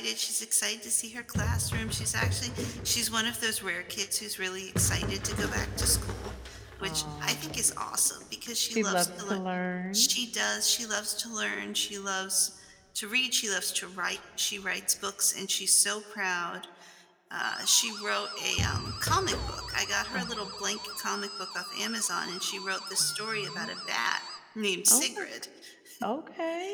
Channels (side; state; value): both; identical; correlation 1.00